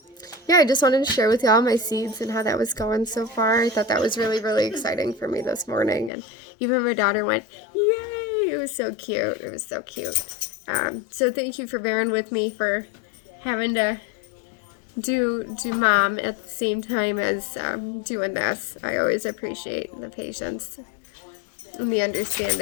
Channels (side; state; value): right; drops out; at 6.1 s